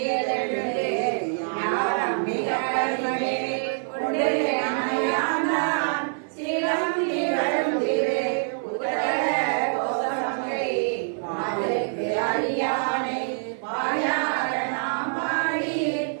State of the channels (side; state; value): left; silent; 57 dB below the other